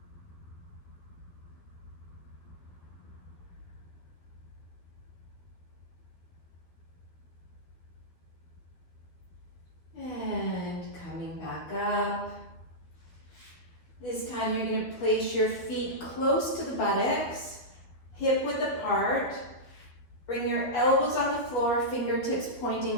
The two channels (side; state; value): right; late; 12 ms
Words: Up. This time you're going to place your feet close to the buttocks, hip width apart. Bring your elbows on the floor, fingertips